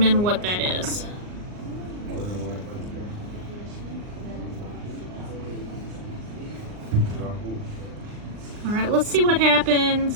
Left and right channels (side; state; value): left; late; 39 ms